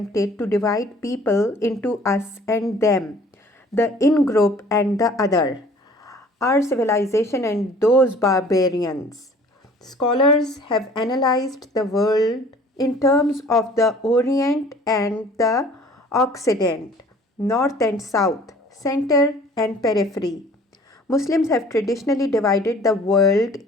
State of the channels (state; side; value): normal; both; correlation 0.51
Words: to divide people into us and them, the in group and the other, our civilization and those barbarians. Scholars have analyzed the world in terms of the Orient and the Occident, North and South, center and periphery. Muslims have traditionally divided the world